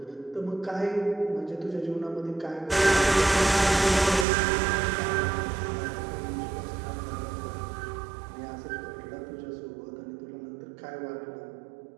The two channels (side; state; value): left; drops out; at 4.2 s